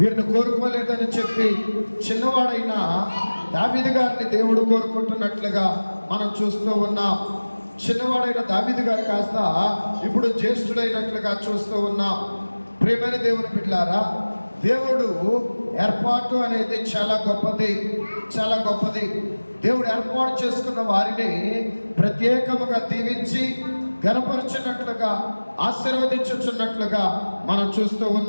కోరుకోలేదని చెప్పి చిన్నవాడైన దావీదు గారిని దేవుడు కోరుకుంటున్నట్లుగా మనం చూస్తూ ఉన్నాం. చిన్నవాడైన దావీదు గారు కాస్త ఇప్పుడు జ్యేష్ఠుడైనట్లుగా చూస్తూ ఉన్నాం. ప్రియమైన దేవుని బిడ్డలారా, దేవుడు ఏర్పాటు అనేది చాలా గొప్పది. దేవుడు ఏర్పాటు చేసుకున్న వారిని ప్రత్యేకముగా దీవించి ఘనపరచినట్లుగా, ఆశీర్వదించుచున్నట్లుగా మనం చూస్తూ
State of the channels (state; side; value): inverted; both; correlation -1.00